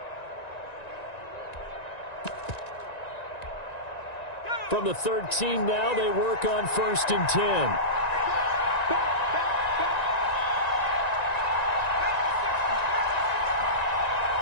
From the 13 now, they work on 1st and 10.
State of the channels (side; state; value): right; late; 1.9 ms